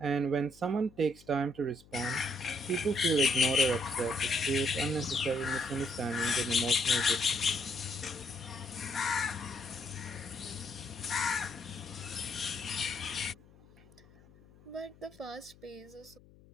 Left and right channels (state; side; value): noise; left; hum, 25 dB below the sound